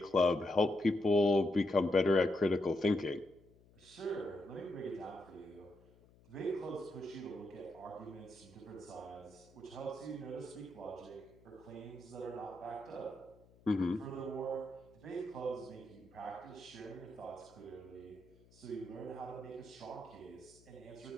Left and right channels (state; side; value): noise; left; hum, 27 dB below the sound